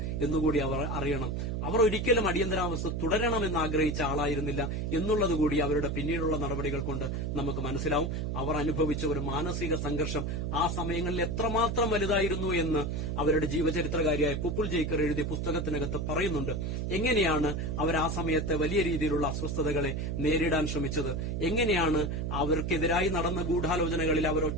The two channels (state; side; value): noise; right; hum, 1 dB below the sound